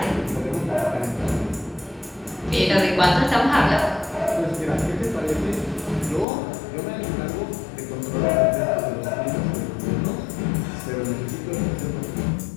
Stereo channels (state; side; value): drops out; right; at 6.2 s